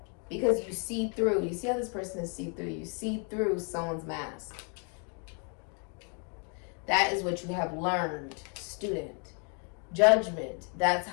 Because you see through. You see how this person is see through. You see through someone's mask. That is what you have learned, student. Judgment, that's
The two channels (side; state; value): right; quieter; 39.1 dB